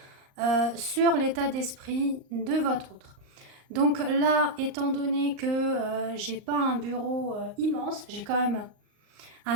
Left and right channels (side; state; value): left; late; 38 ms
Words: sur l'état d'esprit de votre autre. Donc là, étant donné que j'ai pas un bureau immense, j'ai quand même un